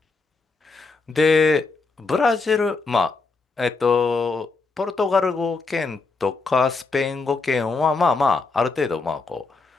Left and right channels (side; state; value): right; quieter; 4.1 dB